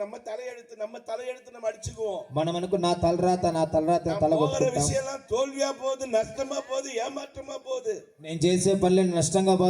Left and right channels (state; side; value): identical; both; correlation 1.00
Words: நம்ம தலையெடுத்து நம்ம அடிச்சுக்குவோம். మనం అనుకు నా తలరాత తలగొట్టుకుంటాం. விஷயம்லாம் தோல்வியா போகுது, నష్టமா పోகுது, ఏమాற்றமா పోகுது. నేను చేసే పనులు నష్టంగా